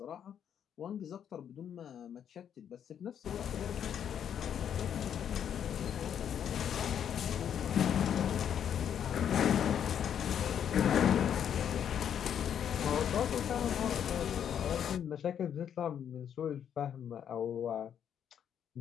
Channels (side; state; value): right; quieter; 8.9 dB